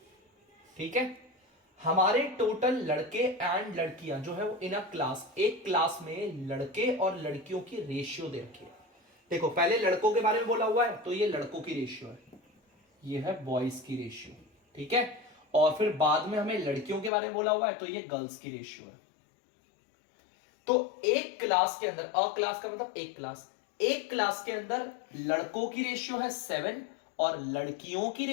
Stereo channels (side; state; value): right; drops out; at 17.1 s